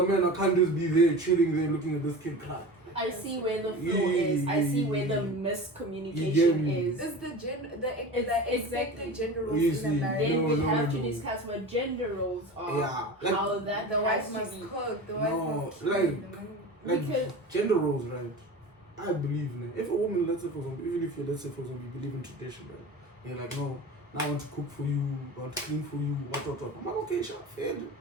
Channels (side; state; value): both; normal; correlation 0.33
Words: man, I can't just be there, chilling there, looking at this kid cry. I see where the flaw is. I see where the miscommunication is. Is the It's expected gender roles Easy. in a marriage? Then we have to no. discuss what gender roles are. Yeah, like- how that The has wife to must be. cook. The wife No, must clean. like- the man- Like Because- gender roles, right? I believe in it. If a woman, let's say for example, even if you let's say for example you believe in tradition, right? You're like, no, now I want to cook for you, I want to clean for you, what. I'm like, okay, sure, fair,